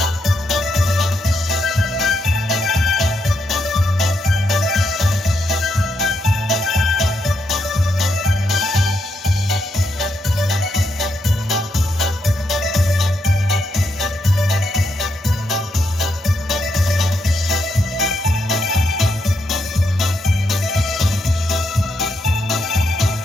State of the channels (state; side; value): normal; both; correlation 0.80